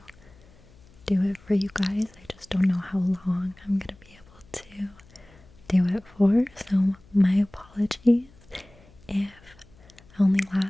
do it for you guys. I just don't know how long I'm gonna be able to do it for, so my apologies if I only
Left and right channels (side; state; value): left; noise; hum, 26 dB below the sound